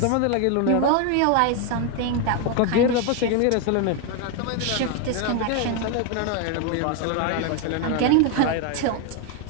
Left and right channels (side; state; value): both; different; correlation 0.01